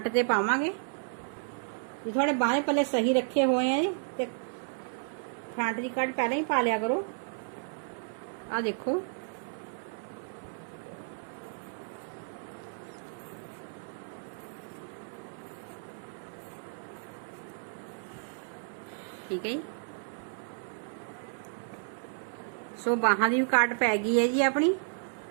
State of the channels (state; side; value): silent; left; digital silence